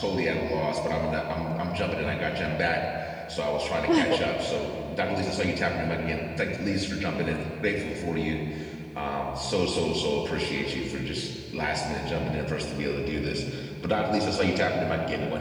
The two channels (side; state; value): both; identical; correlation 1.00